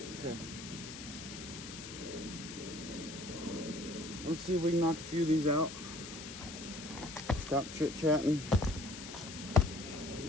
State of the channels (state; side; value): noise; left; hiss, 11 dB below the sound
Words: Okay. Let's see if we can knock a few of these out. Stop chit-chatting.